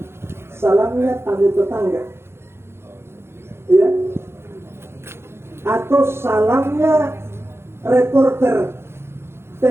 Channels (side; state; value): left; late; 0.12 ms